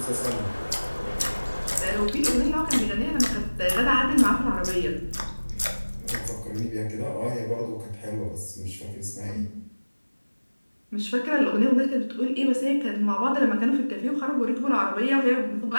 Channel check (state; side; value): inverted; both; correlation -1.00